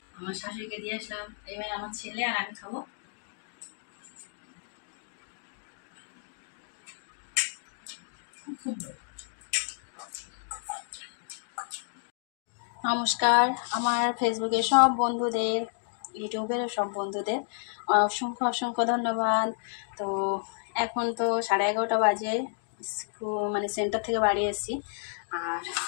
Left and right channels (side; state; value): right; silent; digital silence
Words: আমার শাশুড়িকে দিয়ে আসলাম, এবার আমার ছেলে আর আমি খাবো। নমস্কার আমার ফেসবুকের সব বন্ধুদের, ইউটিউবের সব বন্ধুদের অসংখ্য অসংখ্য ধন্যবাদ। তো এখন তো 11:30 বাজে, মানে সেন্টার থেকে বাড়ি এসেছি। আর